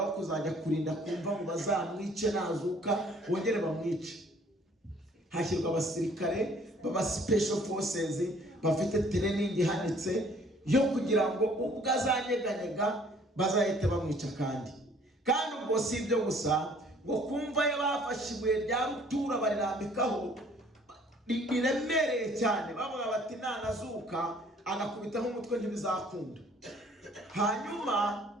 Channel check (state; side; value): normal; both; correlation 0.57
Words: wo kuzajya kurinda kumva ngo bazamwice nazuka bongere bamwice. Hashyirwa abasirikare baba special forces bafite training ihanitse yo kugira ngo ubwo azanyeganyega bazahite bamwica. Kandi ubwo si ibyo gusa, ngo kumva yabafashe ibuye rya rutura barirambikaho riremereye cyane, bavuga bati nanazuka anakubitaho umutwe ntibizakunda. Hanyuma